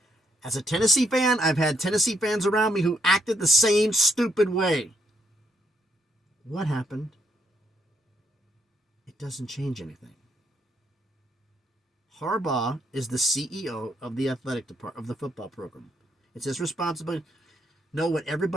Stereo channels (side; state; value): both; normal; correlation 0.74